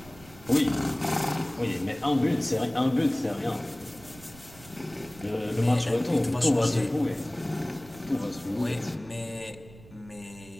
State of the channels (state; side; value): noise; right; rumble, 21 dB below the sound